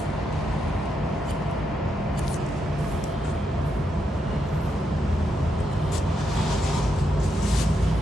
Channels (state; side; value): normal; both; correlation 0.81